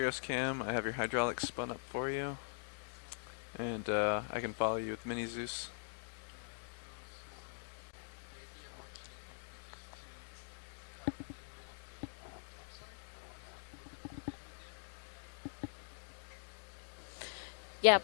Cam. I have your hydraulics spun up for you, and I can follow you with Mini Zeus. Yeah,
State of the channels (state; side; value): silent; right; digital silence